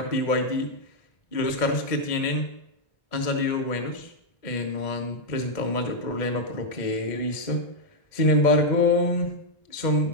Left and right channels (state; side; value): late; right; 2.1 ms